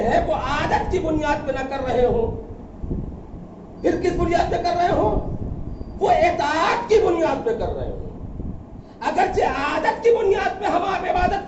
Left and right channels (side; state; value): both; identical; correlation 1.00